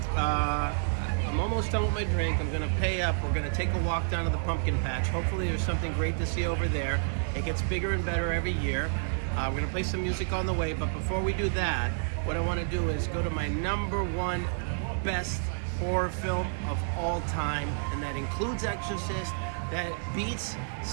I'm almost done with my drink. I'm gonna pay up. We're gonna take a walk down to the pumpkin patch. Hopefully there's something great to see over there. It gets bigger and better every year. We're gonna play some music on the way, but before we do that, what I wanna do is go to my #1 best horror film of all time, and that includes Exorcist. That beats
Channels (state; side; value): silent; left; 58 dB below the other